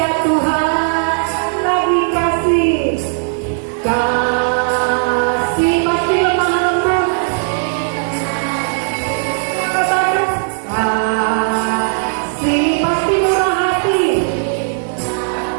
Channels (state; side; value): silent; left; digital silence